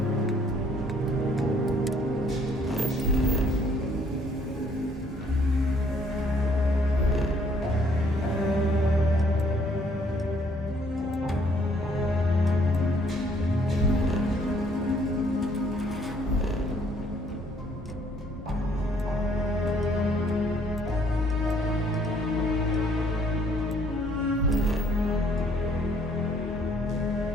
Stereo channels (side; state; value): both; normal; correlation 0.64